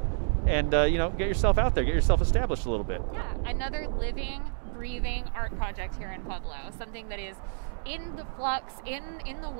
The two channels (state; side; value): silent; left; digital silence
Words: and get yourself out there, get yourself established a little bit. Yeah, another living, breathing art project here in Pueblo. Something that is in the flux, in the